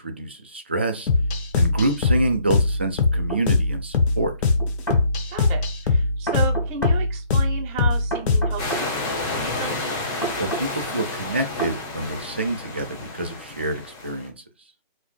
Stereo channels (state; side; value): inverted; both; correlation -0.61